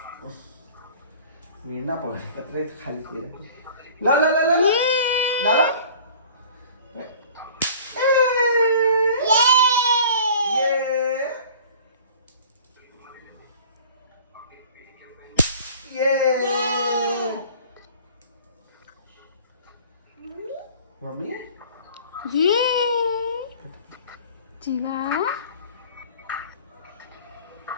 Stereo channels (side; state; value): both; inverted; correlation -0.46